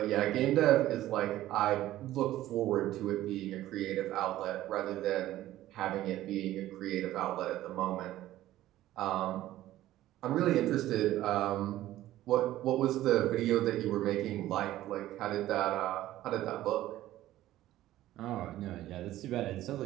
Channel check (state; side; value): quieter; left; 14.5 dB